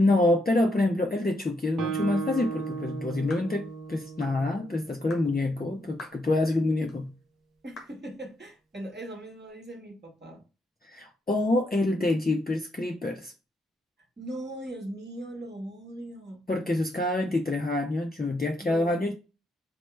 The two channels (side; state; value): both; normal; correlation 0.78